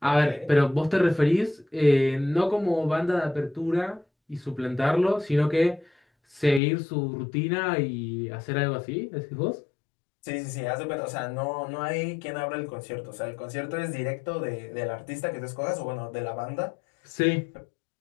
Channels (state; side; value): drops out; right; at 6.6 s